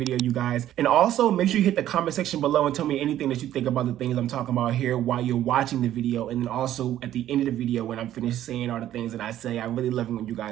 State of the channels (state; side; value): quieter; left; 12.3 dB